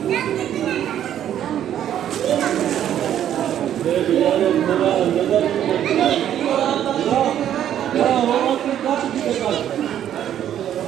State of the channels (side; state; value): left; quieter; 10.6 dB